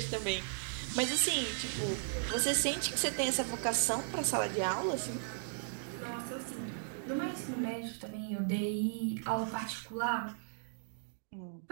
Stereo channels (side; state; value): left; silent; digital silence